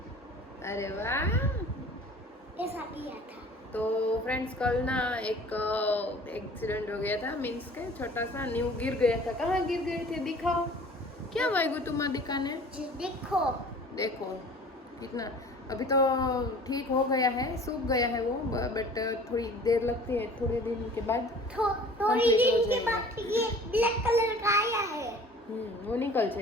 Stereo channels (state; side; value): normal; both; correlation 0.46